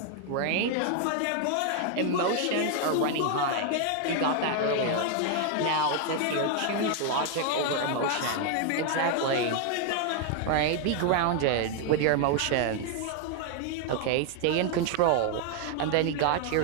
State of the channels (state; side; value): different; both; correlation 0.00